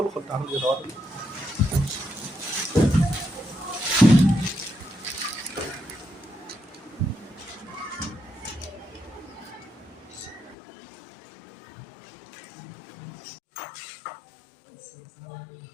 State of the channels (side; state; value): right; drops out; at 10.6 s